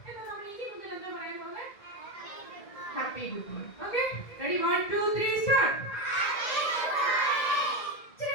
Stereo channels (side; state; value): right; late; 1.8 ms